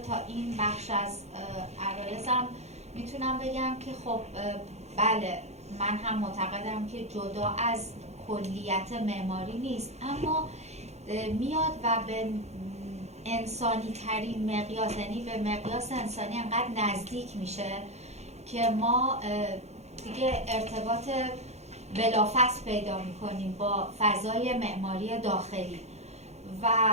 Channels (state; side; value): late; left; 0.32 ms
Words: تا این بخش از عرایزم میتونم بگم که خب بله، من هم معتقدم که جدا از کلیت معماری نیست، اما میاد و به انسانی ترین مقیاس، یعنی به مقیاس انسانی انقدر نزدیک میشه که ما دیگه ارتباط بلافاصله پیدا میکنیم با فضای معماری داخلی و